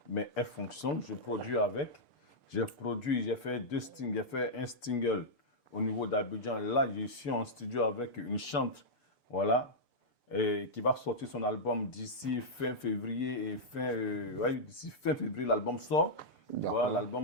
Mais elle fonctionne, je produis avec. J'ai fait un single au niveau d'Abidjan. Là, je suis en studio avec une chanteuse, voilà, et qui va sortir son album d'ici fin février. D'ici fin février, l'album sort. Voilà,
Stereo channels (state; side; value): late; right; 6.8 ms